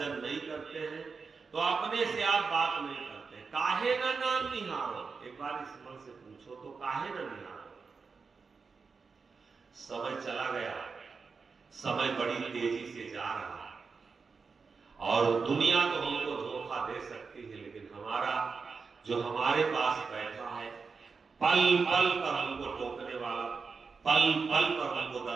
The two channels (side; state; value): left; quieter; 5.0 dB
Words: नहीं करते हैं, तो अपने से आप बात नहीं करते, काहे ना नाम निहारो। एक बार इस मन से पूछो तो काहे ना निहारो। समय चला गया, समय बड़ी तेजी से जा रहा है, और दुनिया तो हमको धोखा दे सकती है, लेकिन हमारा जो हमारे पास बैठा है पल पल पर हमको टोकने वाला, पल पल पर हमको